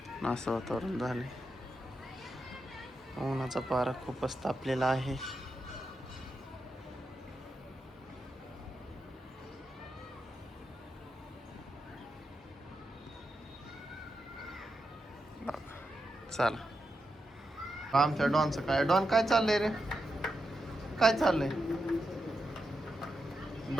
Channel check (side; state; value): both; normal; correlation 0.87